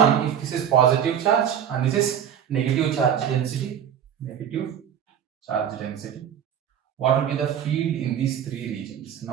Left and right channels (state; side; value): quieter; left; 9.0 dB